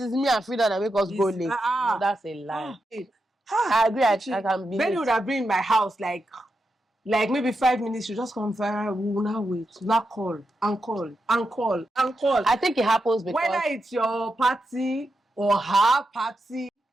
me and Frida that make us go late? No, that's a lie. I agree. I can be. Benny would have been in my house like maybe 5 minutes. You just come fire. We will now wait. Not call and call and call and call. I think it happens because whether it's your party or her party.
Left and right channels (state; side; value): normal; both; correlation 0.87